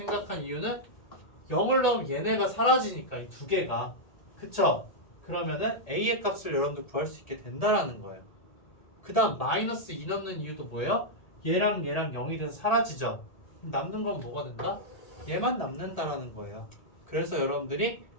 이유는 0을 넣으면 얘네가 사라지니까 이 두 개가. 그쵸? 그러면은 a의 값을 여러분들 구할 수 있게 된다라는 거예요. 그 다음 마이너스 2 넣는 이유도 뭐예요? 얘랑 0이 돼서 사라지죠. 그럼 남는 건 뭐가 된다? 얘만 남는다라는 거예요. 그래서 여러분들이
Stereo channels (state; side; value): late; right; 1.8 ms